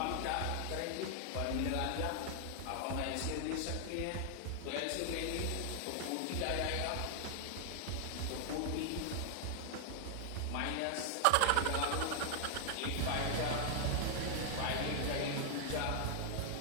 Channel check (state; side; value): different; both; correlation 0.00